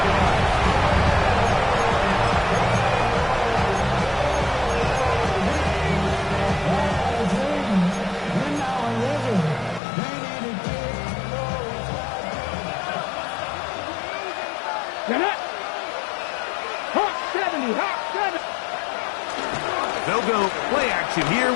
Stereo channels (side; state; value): right; drops out; at 9.8 s